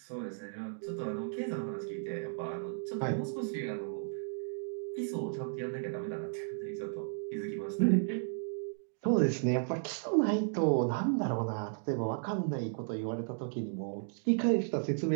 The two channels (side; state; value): left; silent; digital silence